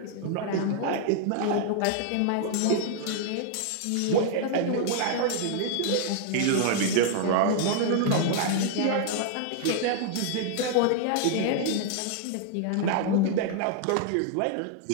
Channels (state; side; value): different; both; correlation -0.01